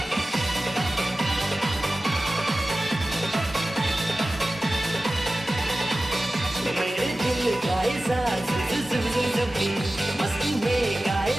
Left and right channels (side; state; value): both; normal; correlation 0.96